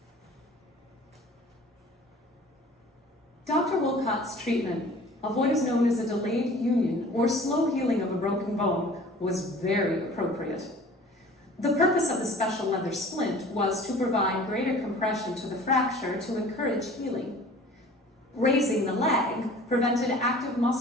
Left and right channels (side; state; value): both; normal; correlation 0.46